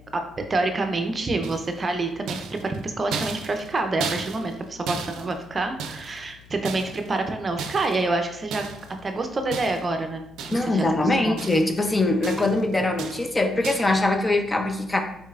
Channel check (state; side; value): noise; left; hum, 24 dB below the sound